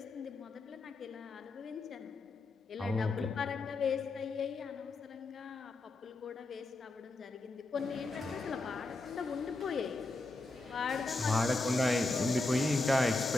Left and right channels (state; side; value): quieter; right; 3.2 dB